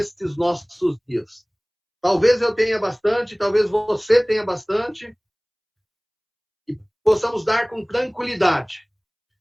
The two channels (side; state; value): both; identical; correlation 1.00